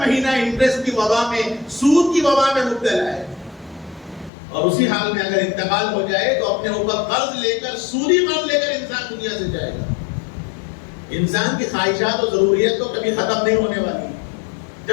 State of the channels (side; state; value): right; drops out; at 4.3 s